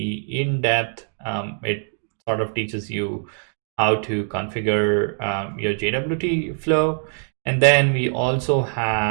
in depth. It sort of teaches you how to configure your JWT flow. And then we also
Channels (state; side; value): silent; left; digital silence